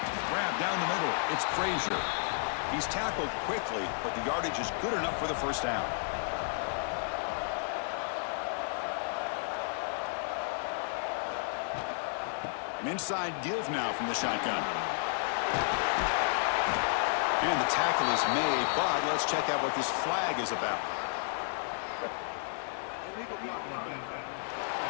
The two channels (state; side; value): silent; right; 56 dB below the other